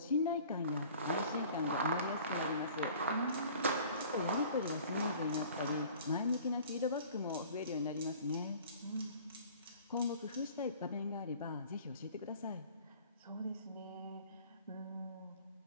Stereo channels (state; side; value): inverted; both; correlation -0.48